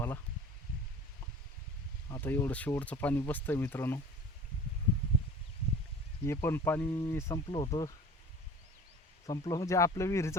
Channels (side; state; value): both; normal; correlation 0.42